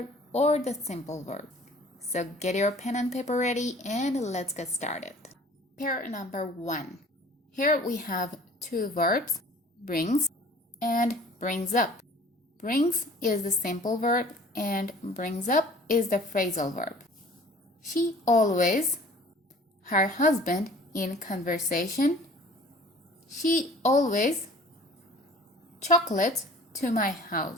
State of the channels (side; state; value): both; normal; correlation 0.49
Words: or the simple verb? So get your pen and paper ready and let's get started. Pair number 1. Here we have 2 verbs, brings and brings up. Brings is the simple verb and brings up is the phrasal verb. She always, her husband in conversation. She always chocolates to my